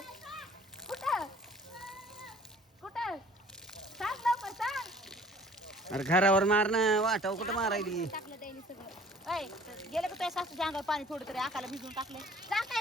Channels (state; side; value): normal; both; correlation 0.52